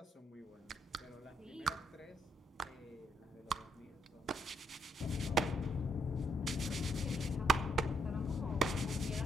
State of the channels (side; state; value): both; normal; correlation 0.75